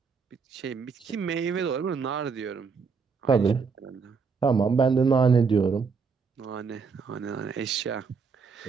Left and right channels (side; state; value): left; quieter; 5.3 dB